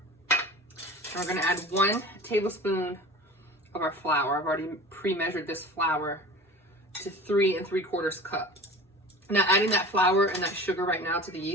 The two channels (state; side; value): normal; both; correlation 0.38